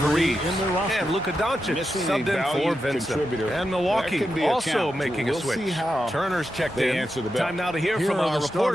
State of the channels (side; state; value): both; normal; correlation 0.88